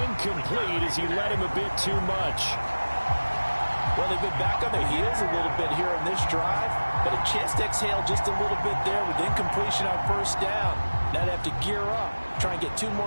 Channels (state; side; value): inverted; both; correlation -1.00